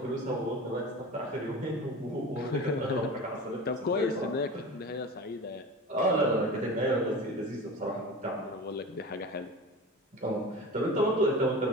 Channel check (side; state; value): both; normal; correlation 0.33